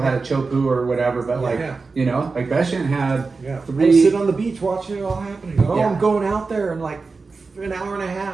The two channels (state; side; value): quieter; left; 4.2 dB